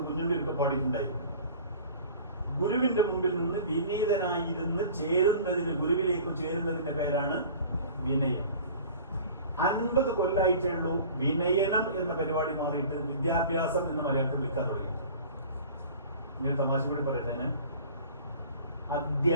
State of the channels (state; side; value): inverted; both; correlation -0.43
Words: കുഞ്ഞുണ്ണിയൊക്കെ പാടിയിട്ടുണ്ടായിരുന്നു. ഗുരുവിന്റെ മുമ്പിൽ നിന്ന് വിനീതനായിരുന്ന് ചേരുന്നതിന്, ഗുരുവിലേക്ക് ചേരുന്നതിന്റെ പേരാണ് വിനയം. 50 കൊല്ലായിട്ടേ ഉള്ളൂ വിനയനം എന്ന പരിപാടി മാറിയിട്ട് വിദ്യാഭ്യാസം എന്ന് മലയാളത്തിൽ വിളിക്കാൻ തുടങ്ങി. ഞാൻ തമാശ കൂടി പറയട്ടെ. ഞാൻ